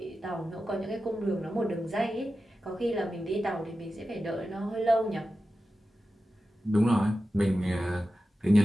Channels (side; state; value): both; normal; correlation 0.92